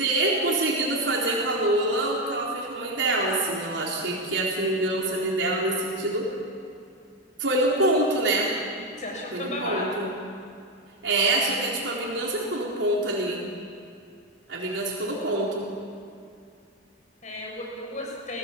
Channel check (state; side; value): normal; both; correlation 0.10